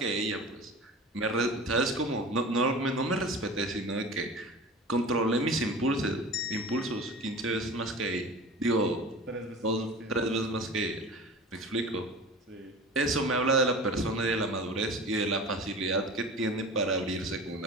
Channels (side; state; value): both; normal; correlation 0.36